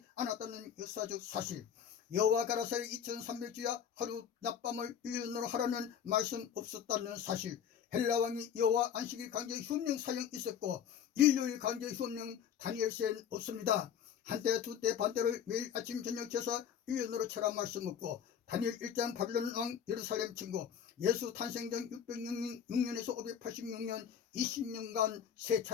않았다는 역사적 사실. 여호와 가라사의 2300주야 하루 낮밤을 1년으로 하라는 말씀 없었다는 사실. 헬라 왕이 여호와 안식일 강제 휴업령 사형 있었고 일요일 강제 휴업령 다니엘서엔 없습니다. 한때 두때 반때를 매일 아침 저녁 제사 1년으로 쳐라 말씀 없고 다니엘 1장 바빌론 왕 예루살렘 침공, 예수 탄생 전 606년에서 586년 20년간 세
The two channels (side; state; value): right; quieter; 8.5 dB